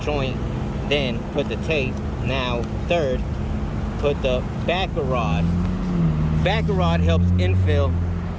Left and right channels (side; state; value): both; identical; correlation 1.00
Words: joint, then put the tape. Now third, put the backer rod. Backer rod helps infill